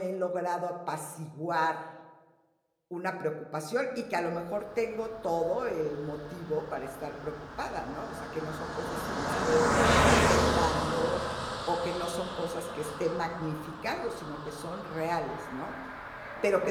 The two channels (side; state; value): both; identical; correlation 1.00